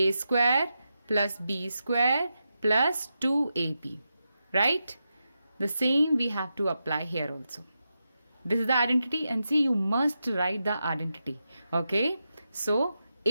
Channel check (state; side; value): inverted; both; correlation -0.88